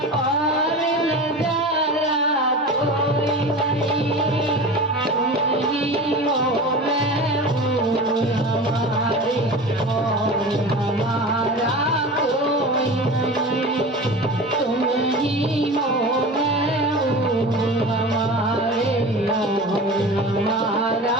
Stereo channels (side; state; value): both; normal; correlation 0.33